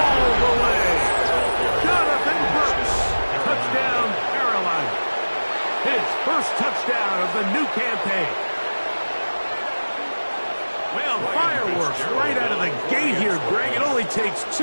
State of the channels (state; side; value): inverted; both; correlation -1.00